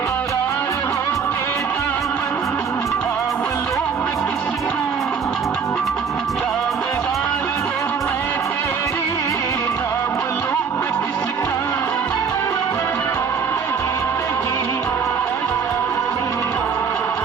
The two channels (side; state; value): left; quieter; 6.2 dB